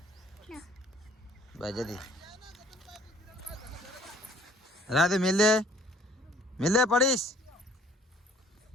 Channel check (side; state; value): both; normal; correlation 0.56